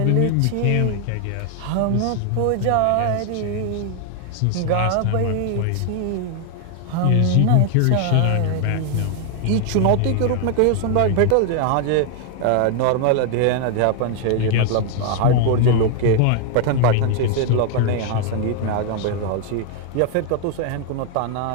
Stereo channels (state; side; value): different; both; correlation 0.00